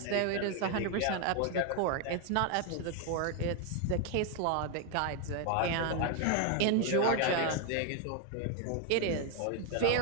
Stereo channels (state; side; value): different; both; correlation 0.01